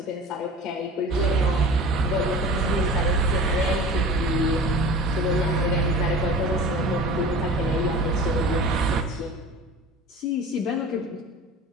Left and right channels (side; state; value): both; normal; correlation 0.38